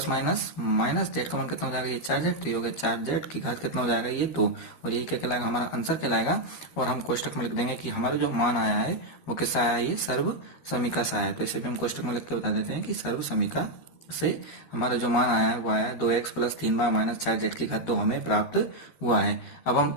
माइनस माइनस z का मान कितना हो जाएगा ये 4z, तो ये हो गया 4z की घात कितना हो जाएगा ये 2, और यही क्या कहलाएगा हमारा आंसर कहलाएगा। और हम कोष्टक में लिख देंगे कि हमारा जो मान आया है वो किससे आया है ये सर्व समीकरण से आया है। तो इसे भी हम कोष्टक में लिख के बता देते हैं कि सर्व समीकरण से हमारा जो मान आया है वो आया है 2x plus 3y minus 4z की घात 2 हमें प्राप्त हुआ है। अब हम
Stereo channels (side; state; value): right; late; 12 ms